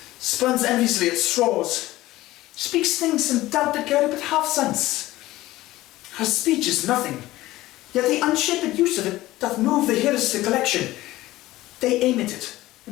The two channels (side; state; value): right; quieter; 16.9 dB